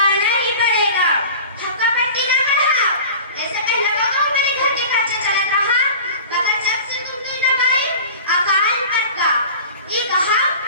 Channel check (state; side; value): inverted; both; correlation -0.38